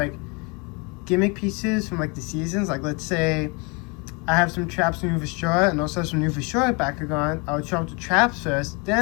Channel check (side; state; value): right; quieter; 30.8 dB